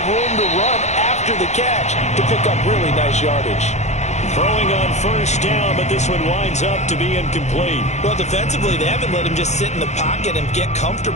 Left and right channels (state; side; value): late; right; 0.33 ms